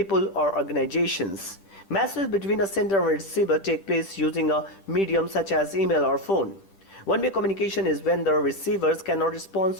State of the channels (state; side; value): late; right; 10 ms